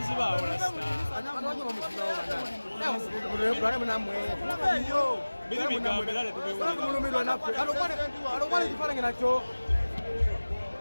urasta. Bili bigambe dale tubewe. Alokwane kifarange nacho.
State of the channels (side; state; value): both; inverted; correlation -1.00